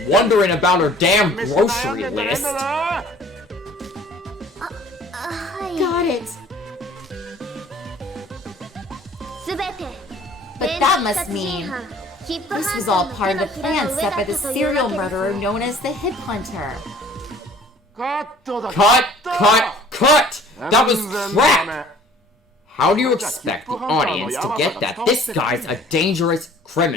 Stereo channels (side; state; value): both; normal; correlation 0.52